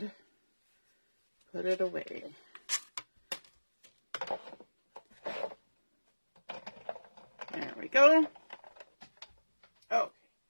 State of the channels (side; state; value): both; inverted; correlation -1.00